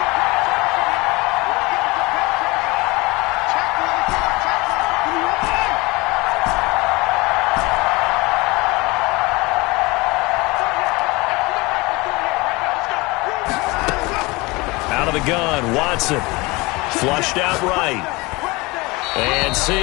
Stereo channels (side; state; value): right; quieter; 23.7 dB